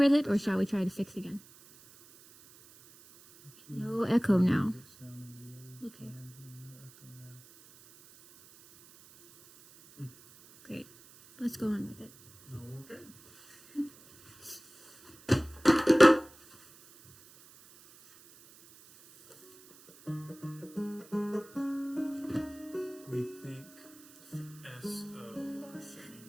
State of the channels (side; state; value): right; noise; hiss, 23 dB below the sound